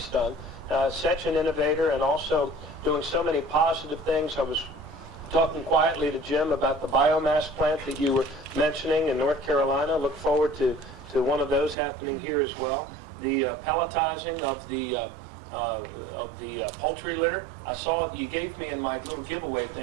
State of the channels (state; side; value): drops out; left; at 11.8 s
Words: done. Such an innovator, and also doing so many positive things. I was talking quietly to Jim about the biomass plant that you were mentioning in North Carolina. Look forward to one of those happening here as well. The pelletizing of the poultry litter. I saw you gave me in my little giveaway